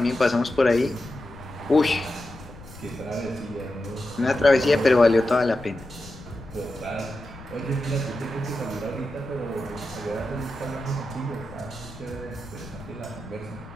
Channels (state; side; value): noise; left; rumble, 17 dB below the sound